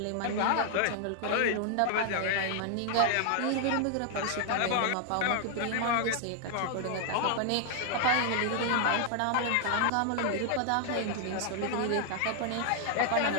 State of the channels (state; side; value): different; both; correlation 0.00